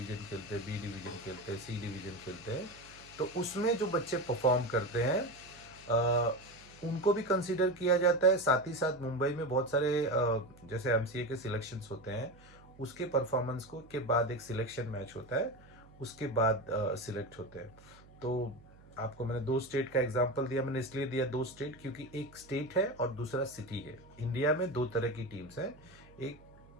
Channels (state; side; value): noise; right; hum, 24 dB below the sound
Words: खेलते हैं, बी डिवीज़न खेलते हैं, सी डिवीज़न खेलते हैं। तो उसमें जो बच्चे परफॉर्म करते हैं उनको भी कंसीडर किया जाता है। साथ ही साथ मुंबई में बहुत सारे जैसे एमसीए के सिलेक्शंस होते हैं, उसके परफॉर्मेंस को के बाद एक सिलेक्शन मैच होता है, उसके बाद सिलेक्ट होते हैं। तो आपको मैंने दो स्टेट का एग्जांपल दिया, मैंने इसलिए दिया दो स्टेट क्योंकि एक स्टेट है और दूसरा सिटी है। इंडिया में दो तरह की टीम्स हैं। एक